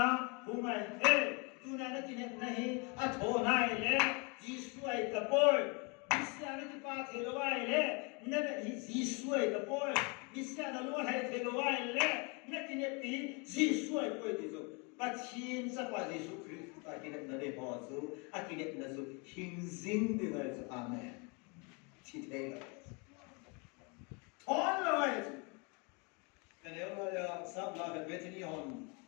humay tuna na kinek na hi, at honay le, Yesus ay kapoy, bisya na tipat hilaway le, na Yesus ay kapoy, bisya na luhay hilaway le, na kinek pi, Yesus ay pwede so, pacin sa pa Yesus Kristus, kinek na de hozo, at kinek na so, hinzing dinga so, amen. Titay lang. All right. Men jag har samlat Bethany hon.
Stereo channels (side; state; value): right; quieter; 31.9 dB